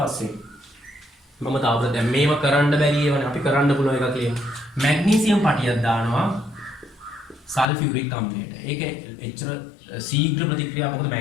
මම තාවර දැන් මේව කරන්න බැරි ඒවනේ අපි කරන්න පුළුවන් එකක් කියමු. මැග්නීසියම් පටියක් දානවා සල්ෆියුරික් අම්ලයට. ඒක එච්චර ශීඝ්‍ර ප්‍රතික්‍රියාවක්. මොකද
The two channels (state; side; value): drops out; right; at 7.7 s